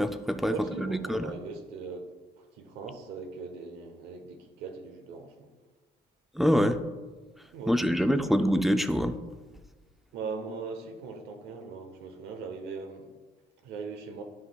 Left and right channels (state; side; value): normal; both; correlation 0.87